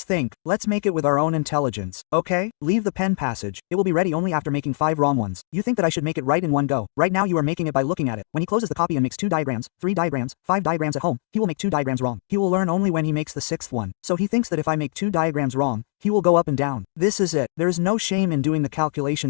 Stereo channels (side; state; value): right; silent; 64 dB below the other